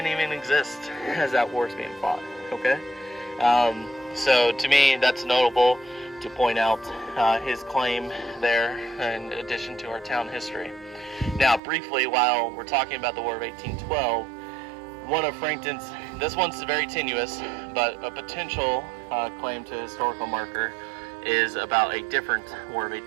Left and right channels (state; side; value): drops out; left; at 11.6 s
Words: even exist as that war is being fought. Okay, so to me that's notable to point out his claim there in addition to our town history. Now, briefly, while we're talking about the War of 1812. One of Frankton's, this one's very tenuous, but a potential claim to historical marker is about a different War of